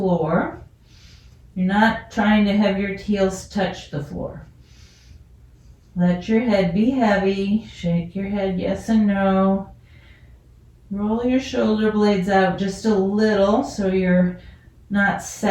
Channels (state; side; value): identical; both; correlation 1.00